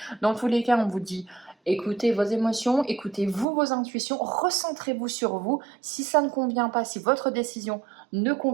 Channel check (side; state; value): left; drops out; at 3.5 s